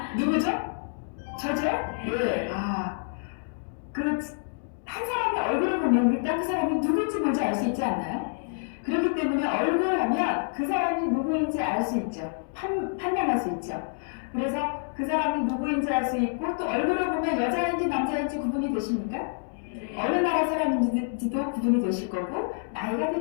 누구죠? 저죠? 네. 한 사람의 얼굴을 보면 일단 그 사람이 누구인지 먼저 알 수 있지 않나요? 그렇기 때문에 얼굴을 하면 그 사람이 누구인지 알 수 있죠. 판명할 수 있죠. 그래서 그 사람이 누구인지 알 수 있고 또 얼굴을 보면 여자인지 남자인지 구분이 되십니까? 어느 나라 사람인지도 구분이 되실 거고 나이가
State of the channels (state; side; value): silent; right; digital silence